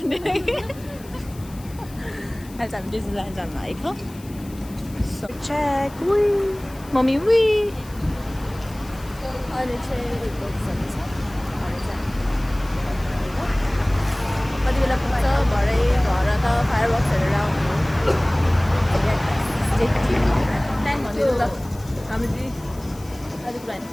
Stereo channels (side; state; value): left; noise; hiss, 22 dB below the sound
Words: अहिले चाहिँ हामी डिज्नील्यान्ड जान आएको सो चेक वी मम्मी वी अहिले चाहिँ कति बेला पुग्छ भरे घर त फायरवर्क्स हेरेर आउनु प्लान भनिदिनु त हामी अलिक प्लान